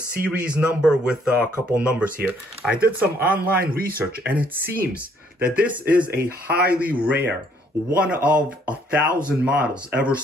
number with a couple numbers here. I did some online research, and it seems that this is a highly rare, one of 1,000 models ever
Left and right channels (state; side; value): normal; both; correlation 0.66